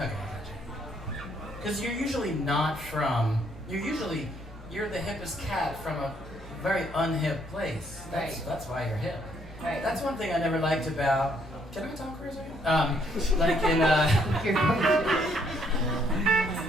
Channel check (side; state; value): both; normal; correlation 0.69